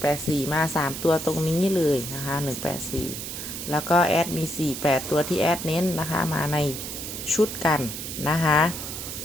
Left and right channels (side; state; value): right; noise; hiss, 7 dB below the sound